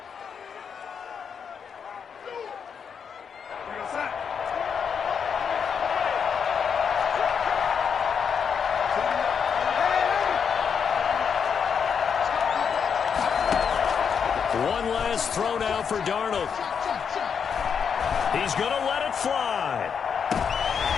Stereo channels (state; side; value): quieter; right; 6.8 dB